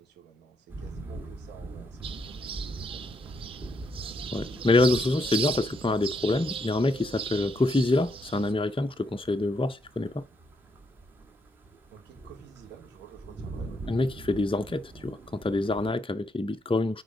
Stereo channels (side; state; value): both; normal; correlation 0.76